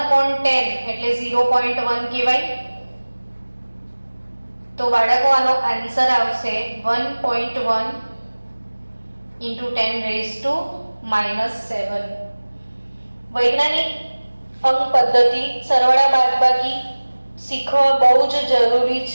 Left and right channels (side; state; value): both; inverted; correlation -1.00